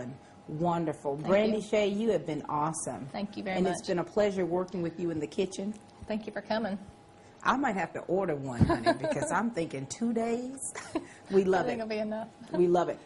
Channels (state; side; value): identical; both; correlation 1.00